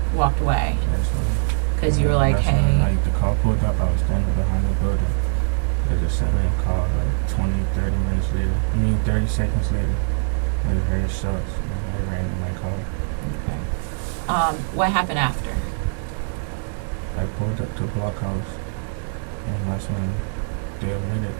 walked away Yes, ma'am. because you were like, That's when, "Hey." like, the car pulled up, I was standing behind the building. They just sitting in the car, like 20, 30 minutes later. 30 seconds later. I just heard shots, and they ran in my car. Okay. What happened after? I pulled up to Blockhouse, and that's when they admitted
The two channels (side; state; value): left; silent; digital silence